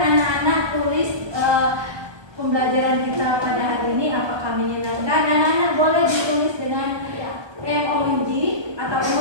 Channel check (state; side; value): late; left; 1.2 ms